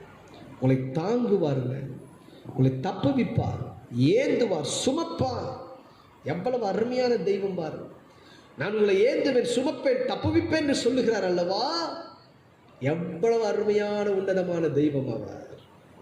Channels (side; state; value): both; identical; correlation 1.00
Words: உங்களை தாங்குவாருங்க, உங்களை தப்புவிப்பார், ஏந்துவார், சுமப்பார். எவ்வளவு அருமையான தெய்வம் பாரு. நான் உங்களை ஏந்துவேன், சுமப்பேன், தப்புவிப்பேன் என்று சொல்லுகிறார் அல்லவா? எவ்வளவு அருமையான உன்னதமான தெய்வம் அவர்.